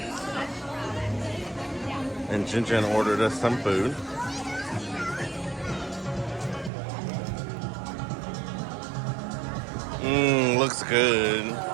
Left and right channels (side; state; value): left; drops out; at 6.7 s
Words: And Jinjin ordered us some food. Looks good.